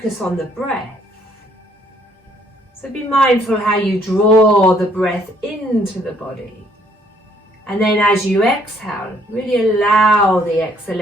on the breath. So be mindful how you draw the breath into the body. And then as you exhale, really allow the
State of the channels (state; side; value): normal; both; correlation 0.65